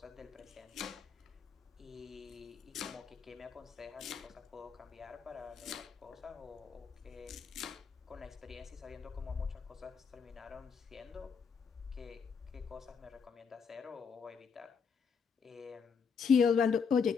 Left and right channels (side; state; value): right; quieter; 6.0 dB